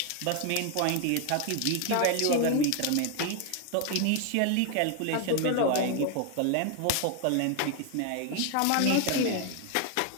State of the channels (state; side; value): different; both; correlation 0.01